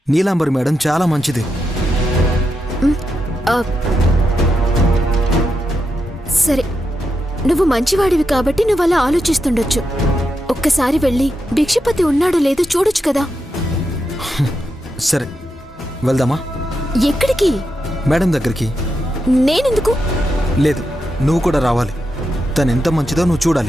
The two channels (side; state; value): both; normal; correlation 0.85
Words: నీలాంబరి మేడం చాలా మంచిది. సరే, నువ్వు మంచివాడివి కాబట్టి నువ్వు అలా ఆలోచిస్తుండొచ్చు. ఒక్కసారి వెళ్ళి భిక్షపతి ఉన్నాడో లేదో చూడొచ్చు కదా. సరే, వెళ్దామా? ఎక్కడికి? మేడం దగ్గరికి. నేనెందుకు? లేదు, నువ్వు కూడా రావాలి. తను ఎంత మంచిదో నువ్వు